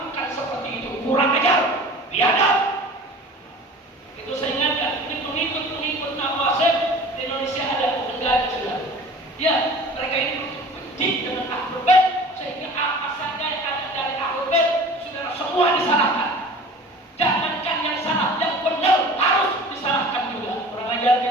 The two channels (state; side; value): normal; both; correlation 0.42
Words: seperti itu. Kurang ajar, biadab. Itu saya ingatkan, ini pengikut Nawasib di Indonesia ada, enggak ada, saudara. Ya, mereka ini benci dengan Ahlul Bait sehingga apa saja yang ada dari Ahlul Bait, saudara, semua disalahkan. Jangankan yang salah, yang benar harus disalahkan juga. Kurang ajar